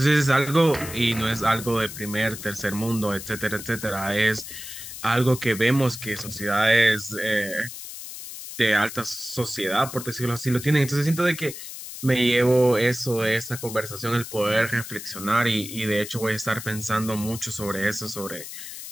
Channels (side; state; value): left; noise; hiss, 11 dB below the sound